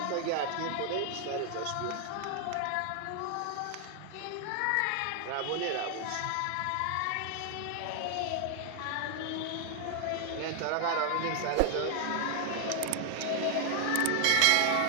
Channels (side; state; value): both; different; correlation 0.00